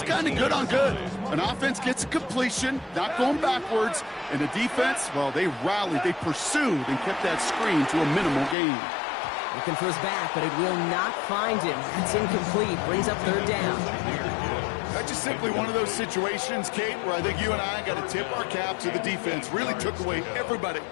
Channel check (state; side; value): drops out; right; at 8.6 s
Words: kind of good on good. An offense gets a completion, not going backwards, and the defense, well, they rallied, they pursued, and kept that screen to a minimal gain. Looking for his back, but it will not find him. It's incomplete. Brings up 3rd down. That's just simply one of those situations, Kate, where I think you and I got to tip our cap to the defense. Really took away everybody.